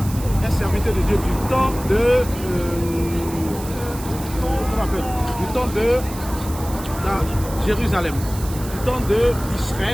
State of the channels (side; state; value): right; noise; hiss, 14 dB below the sound